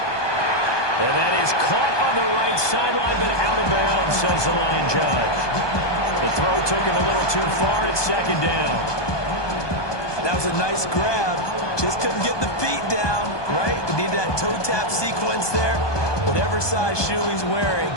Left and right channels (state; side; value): late; right; 1.2 ms